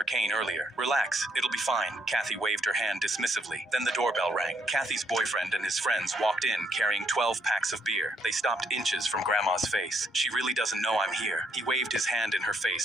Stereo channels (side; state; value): both; normal; correlation 0.72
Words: cane earlier. Relax, it'll be fine. Kathy waved her hand dismissively. Then the doorbell rang. Kathy's boyfriend and his friends walked in carrying 12 packs of beer. They stopped inches from Grandma's face. She really doesn't know I'm here. He waved his hand in her